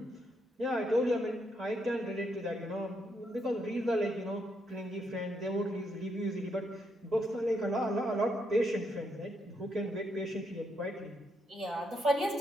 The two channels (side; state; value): both; normal; correlation 0.77